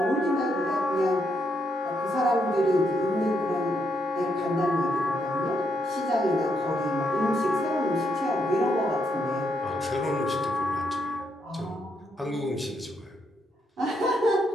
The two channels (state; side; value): normal; both; correlation 0.78